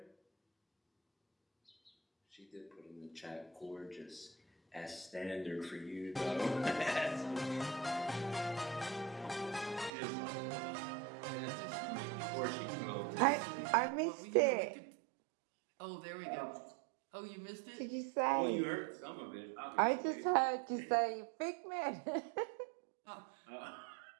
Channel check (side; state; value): left; drops out; at 9.9 s